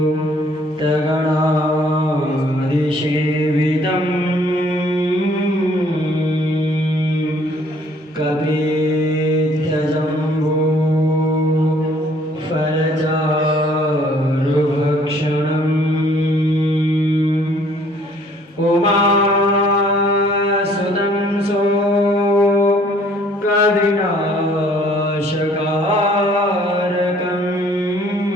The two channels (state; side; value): normal; both; correlation 0.59